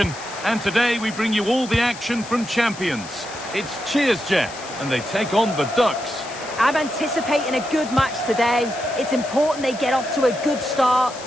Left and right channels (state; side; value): noise; left; hiss, 15 dB below the sound